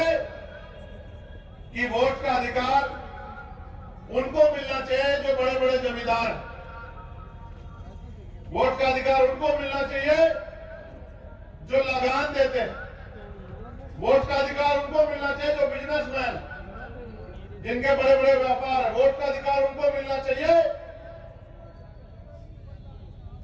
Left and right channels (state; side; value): identical; both; correlation 1.00